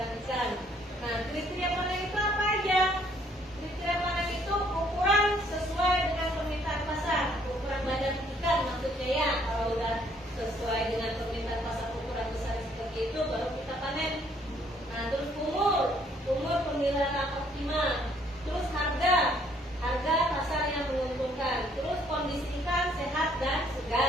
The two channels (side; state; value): both; normal; correlation 0.65